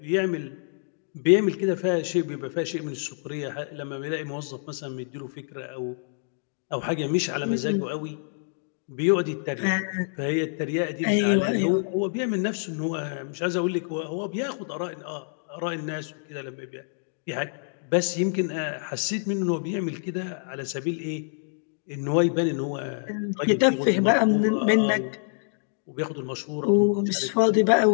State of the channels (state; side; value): silent; right; digital silence